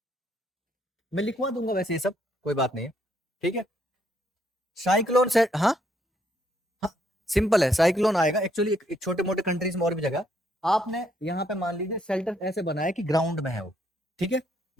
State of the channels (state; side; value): normal; both; correlation 0.71